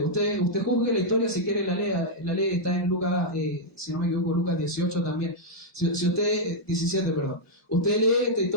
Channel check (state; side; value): normal; both; correlation -0.05